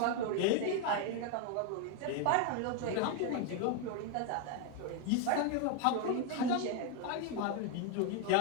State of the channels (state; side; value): different; both; correlation 0.01